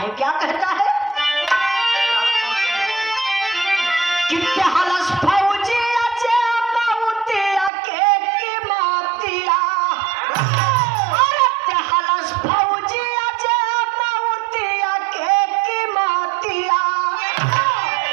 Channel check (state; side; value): drops out; left; at 7.7 s